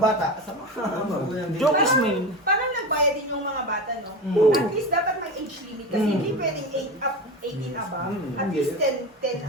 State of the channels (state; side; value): normal; both; correlation 0.24